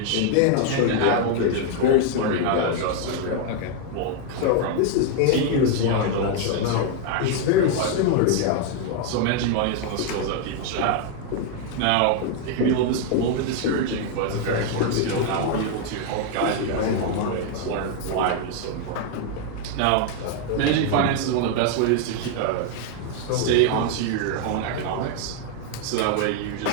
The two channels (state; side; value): different; both; correlation 0.00